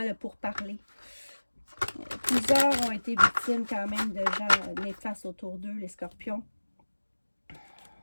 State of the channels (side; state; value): both; inverted; correlation -1.00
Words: le pourparler. Plusieurs ont été victimes quand même de gens néfastes autour d'eux, les scorpions.